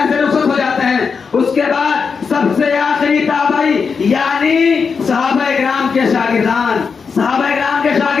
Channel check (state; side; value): quieter; right; 5.6 dB